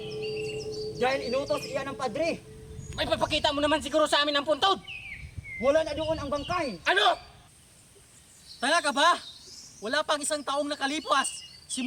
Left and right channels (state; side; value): identical; both; correlation 1.00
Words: Dahil inutos iyan ng padre. May papakita mo naman siguro sa amin ang puntod! Wala na doon ang bangkay. Ano? Tanga ka ba? Wala pang isang taong nakalipas.